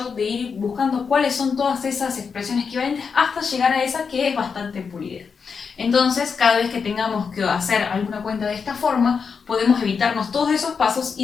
de ir buscando cuáles son todas esas expresiones equivalentes hasta llegar a esa que es bastante pulida. Entonces, cada vez que tengamos que hacer alguna cuenta de esta forma, podemos evitarnos todos esos pasos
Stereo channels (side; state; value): right; quieter; 5.8 dB